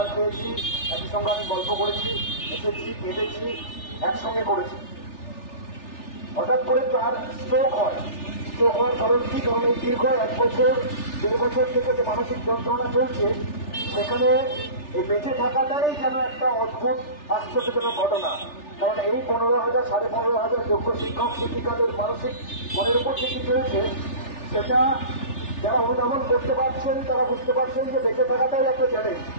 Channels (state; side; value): late; right; 3.4 ms